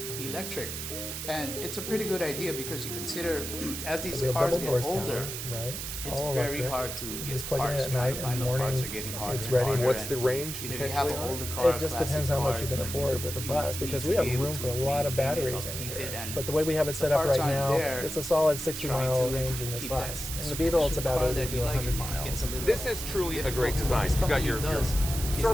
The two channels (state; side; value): noise; right; hiss, 6 dB below the sound